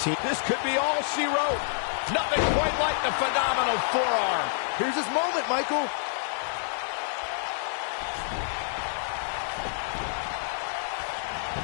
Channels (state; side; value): silent; right; 58 dB below the other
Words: This could be all she wrote. Nothing quite like the phenomenal forearm. Here's his moment, Michael.